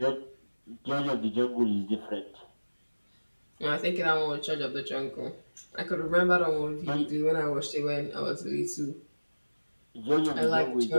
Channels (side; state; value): both; inverted; correlation -1.00